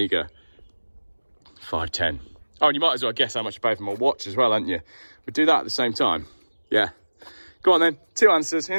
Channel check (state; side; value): inverted; both; correlation -1.00